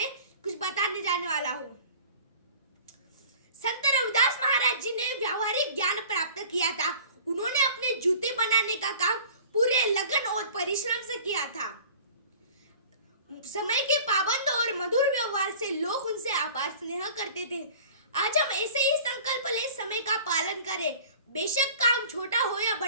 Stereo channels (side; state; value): both; inverted; correlation -0.45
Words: कुछ बताने जाने वाला हूँ। संत रविदास महाराज जी ने व्यावहारिक ज्ञान प्राप्त किया था। उन्होंने अपने जूते बनाने का काम पूरे लगन और परिश्रम से किया था। समय के पाबंद और मधुर व्यवहार से लोग उनसे अपार स्नेह करते थे। आज हम ऐसे ही संकल्प ले समय का पालन करें। बेशक काम छोटा हो या